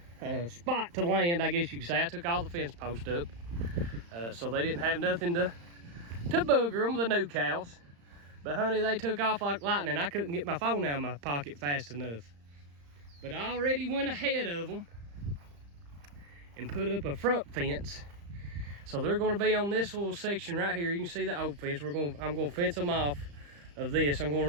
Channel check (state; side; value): late; left; 35 ms